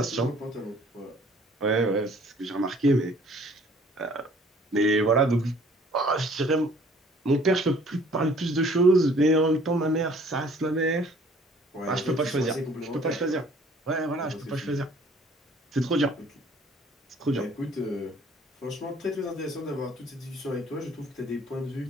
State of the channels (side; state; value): both; normal; correlation 0.55